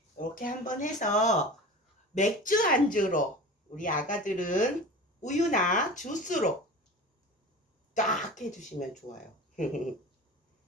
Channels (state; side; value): normal; both; correlation 0.35